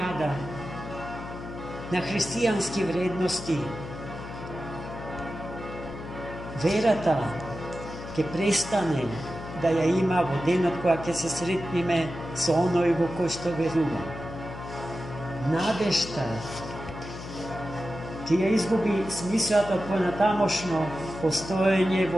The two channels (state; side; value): noise; left; hum, 11 dB below the sound